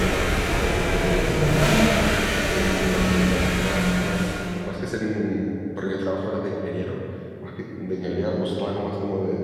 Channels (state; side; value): identical; both; correlation 1.00